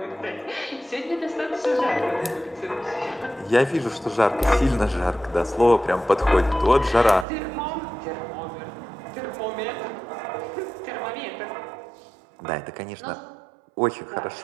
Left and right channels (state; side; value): drops out; left; at 7.2 s